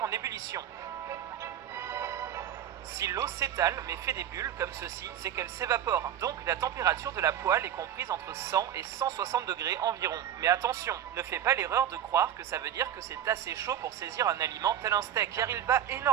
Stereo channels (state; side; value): quieter; left; 10.4 dB